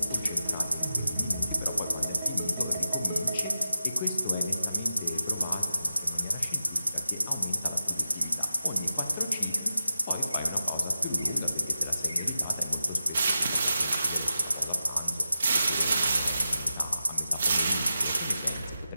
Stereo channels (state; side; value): inverted; both; correlation -0.91